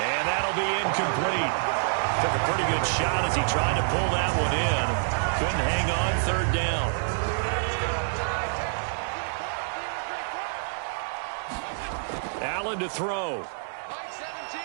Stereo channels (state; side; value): silent; left; digital silence